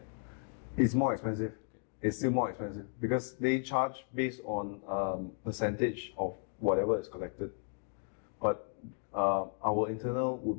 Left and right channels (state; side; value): silent; right; 55 dB below the other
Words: It's more expensive. It's still more expensive because they charge based on percentage of whatever is collected. But our internal would